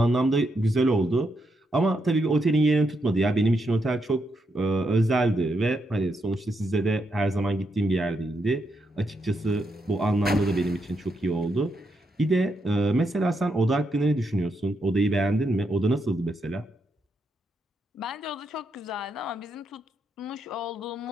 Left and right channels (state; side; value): normal; both; correlation 0.80